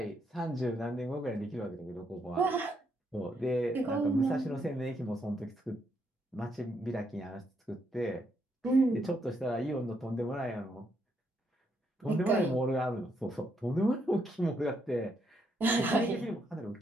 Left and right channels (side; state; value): both; normal; correlation 0.76